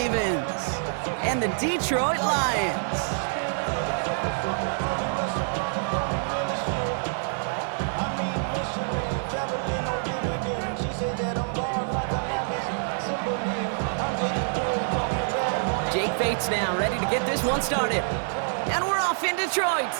and the Detroit Lions. Fates now, ready to get this one started. And we're off in Detroit.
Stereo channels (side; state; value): left; silent; digital silence